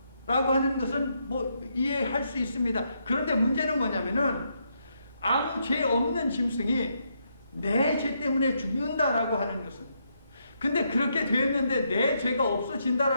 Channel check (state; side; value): inverted; both; correlation -0.78